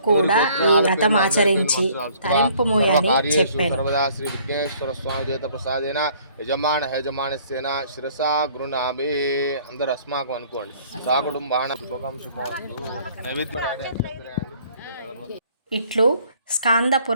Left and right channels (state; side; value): inverted; both; correlation -0.58